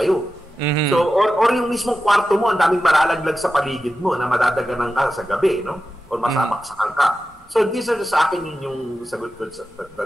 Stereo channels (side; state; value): both; normal; correlation 0.92